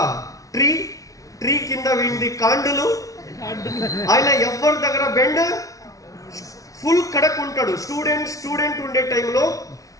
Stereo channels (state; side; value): late; right; 0.17 ms